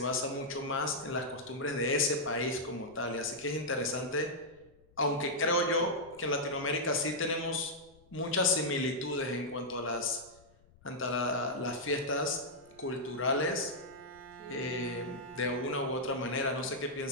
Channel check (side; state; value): left; noise; rumble, 28 dB below the sound